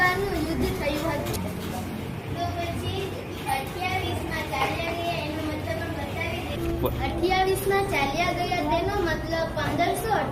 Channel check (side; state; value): both; identical; correlation 1.00